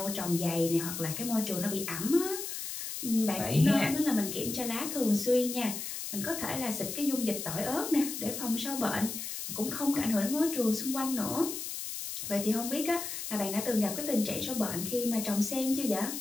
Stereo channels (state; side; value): noise; left; hiss, 6 dB below the sound